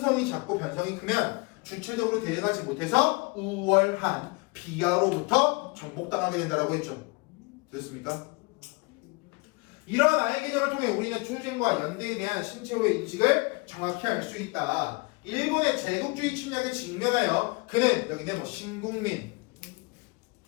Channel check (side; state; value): right; quieter; 27.5 dB